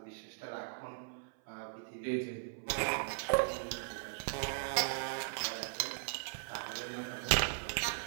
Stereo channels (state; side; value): silent; left; 52 dB below the other